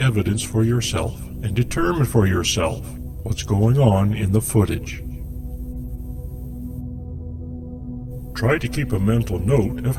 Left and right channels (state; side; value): identical; both; correlation 1.00